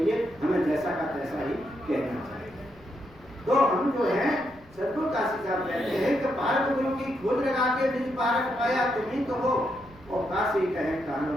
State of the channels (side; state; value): left; noise; rumble, 25 dB below the sound